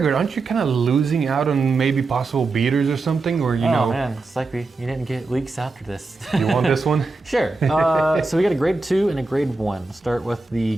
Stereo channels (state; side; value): quieter; left; 3.6 dB